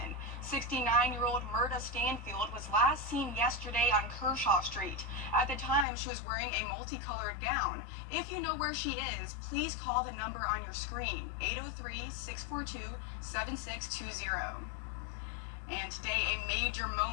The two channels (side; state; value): right; drops out; at 5.9 s